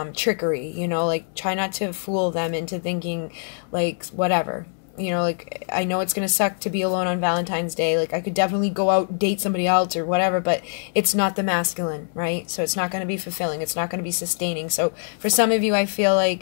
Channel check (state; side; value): silent; right; digital silence